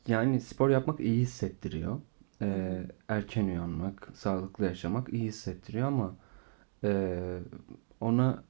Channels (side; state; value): left; silent; digital silence